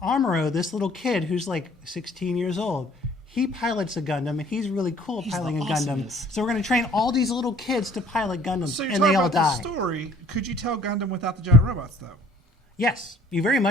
Amuro, this little kid who's like 16 years old, he pilots a Gundam and he's really cool at piloting a Gundam. So we're going to train all these little kids to pilot Gundams, So you're and talking they all about die. the story. Could you tell Gundam without the giant robots, though? Yes, you very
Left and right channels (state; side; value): normal; both; correlation 0.55